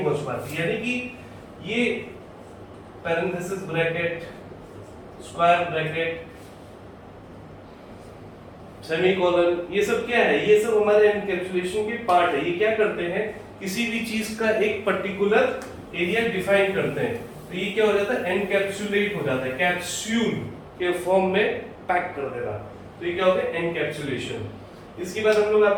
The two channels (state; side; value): identical; both; correlation 1.00